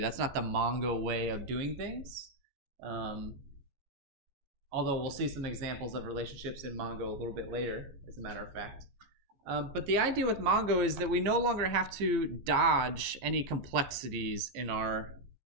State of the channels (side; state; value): left; late; 15 ms